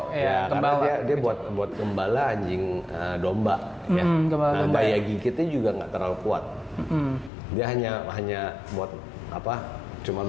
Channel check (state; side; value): drops out; right; at 7.3 s